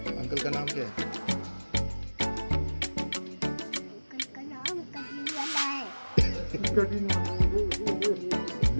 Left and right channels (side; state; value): both; inverted; correlation -1.00